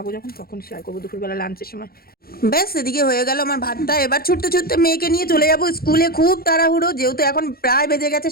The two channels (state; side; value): late; right; 0.44 ms